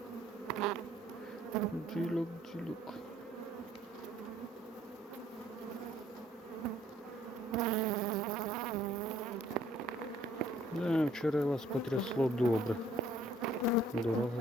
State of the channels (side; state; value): both; normal; correlation 0.61